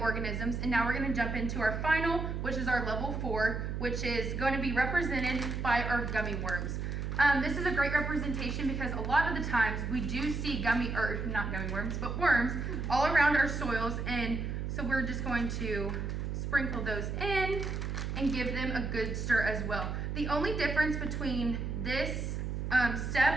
and now we're going to jump into our final, which is our level 4, which is going to be represented by our gummy worms. This is a great representation because a lot of the times we do see not gummy worms, but worms all around our soils, and so we're just going to sprinkle those in and give them a good stir as well. The only difference between this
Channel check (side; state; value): right; noise; hum, 3 dB below the sound